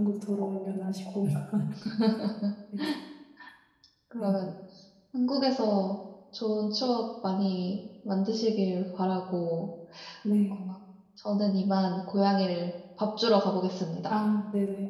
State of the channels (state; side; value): identical; both; correlation 1.00